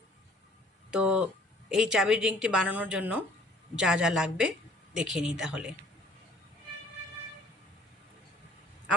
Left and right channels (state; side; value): normal; both; correlation 0.56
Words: তো এই চাবির রিংটি বানানোর জন্য যা যা লাগবে দেখে নিই তাহলে।